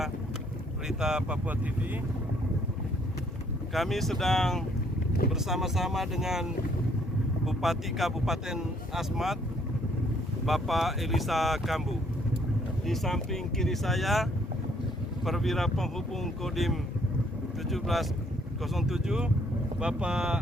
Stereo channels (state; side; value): normal; both; correlation 0.65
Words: berita Papua TV. Kami sedang bersama-sama dengan Bupati Kabupaten Asmat, Bapak Elisa Kambu. Di samping kiri saya, Perwira Penghubung Kodim 1707, Bapak